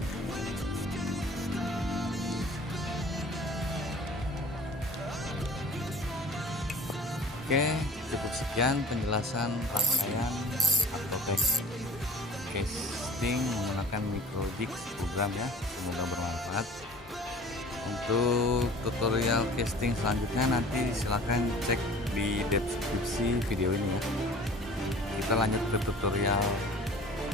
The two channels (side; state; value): both; normal; correlation 0.45